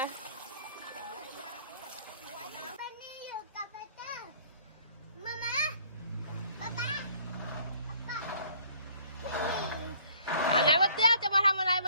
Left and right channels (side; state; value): both; inverted; correlation -0.58